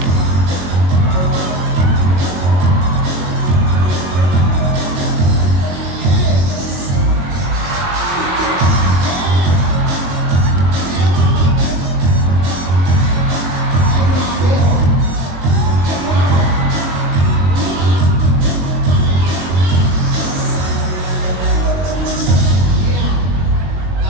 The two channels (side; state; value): left; late; 22 ms